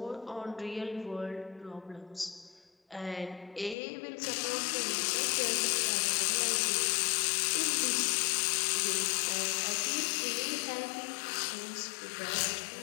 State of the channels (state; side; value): drops out; right; at 3.8 s